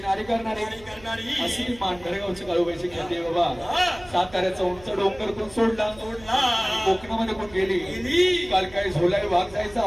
करणारी करणारी अशी ती मांडरगावची काळूबाईची ख्याती आहे बाबा साताऱ्याचा उंच डोंगर कोण सोडला सोडला कोकणामध्ये कोण गेली काल काही झोलाई वाघ जायचा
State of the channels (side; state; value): right; noise; hum, 22 dB below the sound